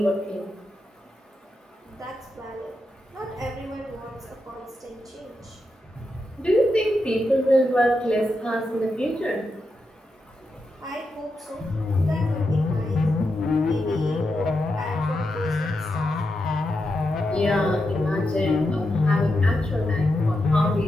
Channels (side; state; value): both; normal; correlation 0.86